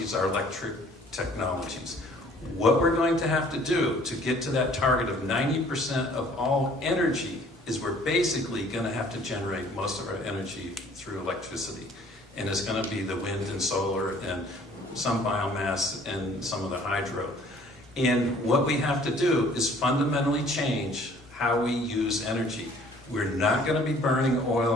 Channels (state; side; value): normal; both; correlation 0.55